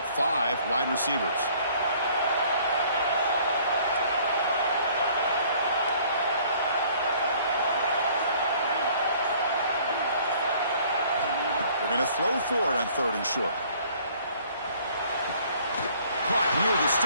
wide receivers. They're going to throw for it on 3rd and short. Caught near the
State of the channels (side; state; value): both; inverted; correlation -0.57